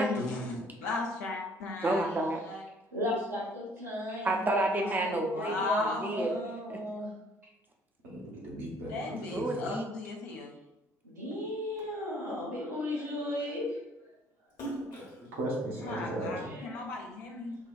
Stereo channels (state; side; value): normal; both; correlation 0.59